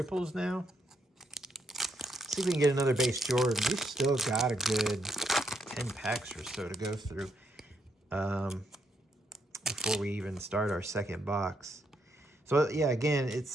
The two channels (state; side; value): normal; both; correlation 0.76